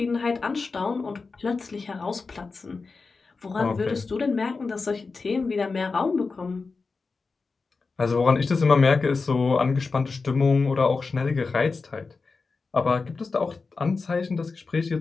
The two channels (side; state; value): right; quieter; 4.3 dB